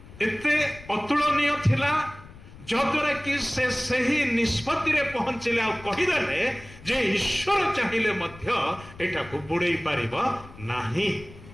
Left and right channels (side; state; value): left; noise; rumble, 19 dB below the sound